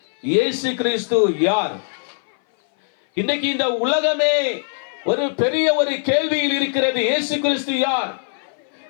இயேசு கிறிஸ்து யார்? இன்றைக்கு இந்த உலகமே ஒரு பெரிய ஒரு கேள்வியில் இருக்கிறது. இயேசு கிறிஸ்து யார்?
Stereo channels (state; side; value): silent; right; 59 dB below the other